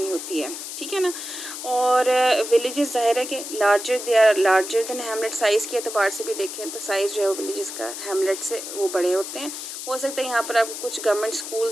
होती है। ठीक है ना, और विलेजेस ज़ाहिर है कि they are larger than hamlet. Size के अतबार से भी देखें तो साइज़ जो है वो विलेजेस का हैमलेट से वो बड़े होते हैं। हो सकता है यहाँ पर आपको कुछ गवर्नमेंट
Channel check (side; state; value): left; noise; hiss, 8 dB below the sound